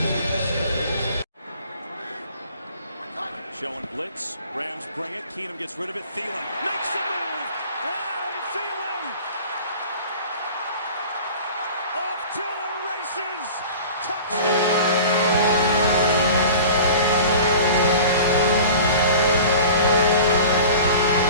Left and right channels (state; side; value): inverted; both; correlation -0.40